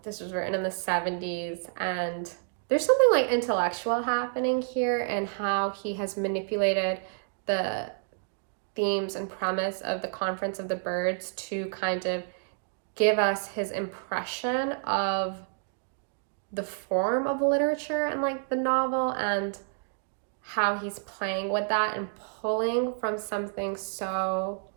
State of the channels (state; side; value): silent; left; digital silence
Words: this was written in the 70s, and there's something like intellectual happening here and how he has manipulated the themes and premise of the Conference of the Birds to kind of give us his impression of the form of literature and like the novel, and how he's playing with that and pulling from something so